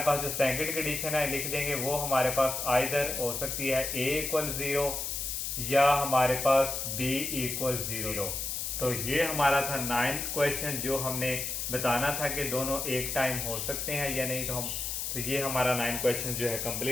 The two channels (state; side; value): noise; left; hiss, 3 dB below the sound